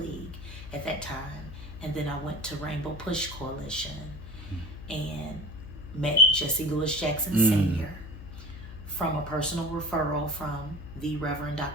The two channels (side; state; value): left; noise; hum, 12 dB below the sound